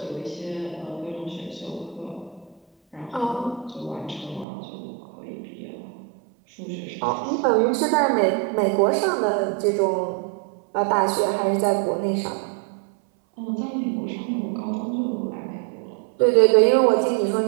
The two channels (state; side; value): drops out; left; at 4.5 s